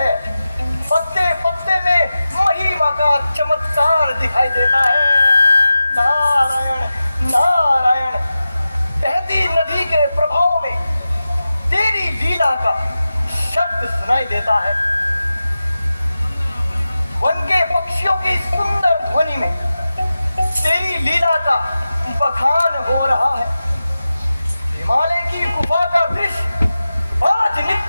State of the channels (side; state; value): both; inverted; correlation -0.93